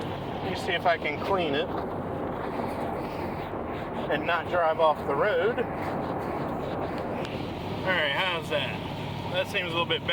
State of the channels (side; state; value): both; identical; correlation 1.00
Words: me see if I can clean it. and not drive off the road. Alright, how's that? That seems a little bit